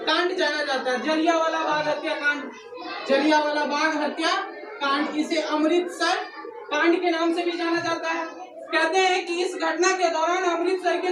कांड जाना जाता है? जलियांवाला बाग हत्याकांड, जलियांवाला बाग हत्याकांड, इसे अमृतसर कांड के नाम से भी जाना जाता है। कहते हैं कि इस घटना के दौरान अमृतसर के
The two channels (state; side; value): identical; both; correlation 1.00